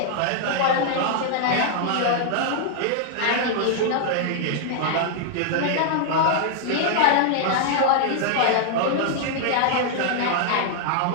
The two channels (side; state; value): both; different; correlation 0.00